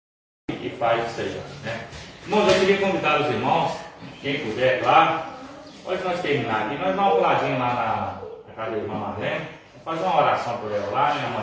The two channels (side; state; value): both; identical; correlation 1.00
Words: E faz isso aí, né? Irmãos, eu queria convidar os irmãos, quem puder, claro. Pode nós terminar aqui, nós damos um puladinho lá na casa da irmã Marlene, fazer uma oração por ela lá, né?